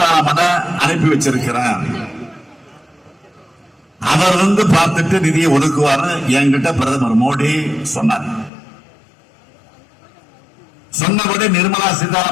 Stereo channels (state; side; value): drops out; right; at 8.5 s